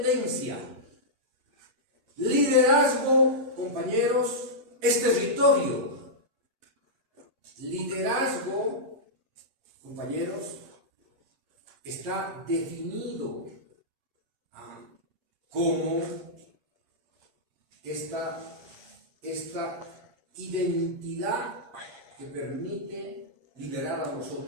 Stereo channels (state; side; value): late; left; 8.3 ms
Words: Liderazgo, compañeros, es territorio. Liderazgo, compañeros, está definido como esta identidad que permite liberar a los